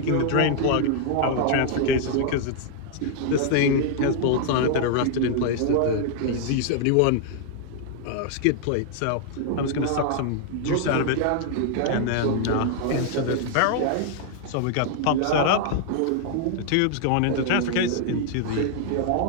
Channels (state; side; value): different; both; correlation 0.00